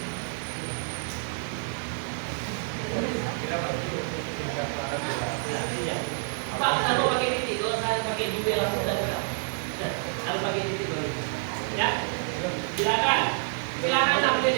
Pak, kalau pakai titik, kalau saya pakai juga langsung dan harus pakai titik dulu. Ya, silakan sampai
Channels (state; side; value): silent; left; digital silence